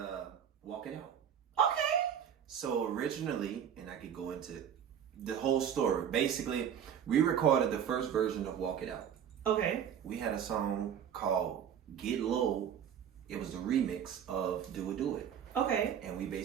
Walk It Out. Okay. So originally, and I could go into the whole story. Basically, we recorded the first version of Walk It Out. Okay. We had a song called Get Low. It was the remix of Do It, Do It. Okay. And we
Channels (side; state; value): left; quieter; 8.8 dB